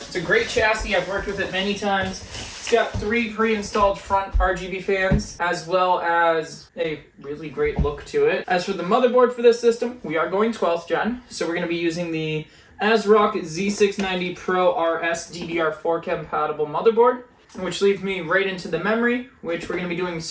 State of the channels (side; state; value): both; identical; correlation 1.00